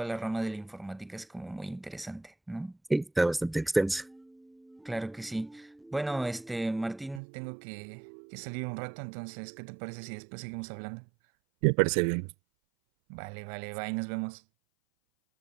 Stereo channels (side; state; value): left; drops out; at 7.2 s